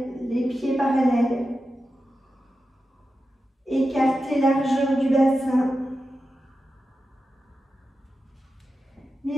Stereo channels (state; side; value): normal; both; correlation 0.91